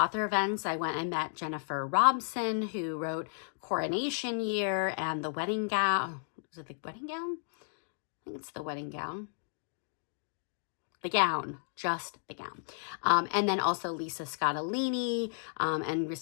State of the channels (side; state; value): right; silent; digital silence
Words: events. I went and met Jennifer Robson, who wrote Coronation Year and The Wedding Gown. Was it The Wedding Gown? I think it's The Wedding Gown. The Gown, just The Gown. And then also Lisa Scottolini, and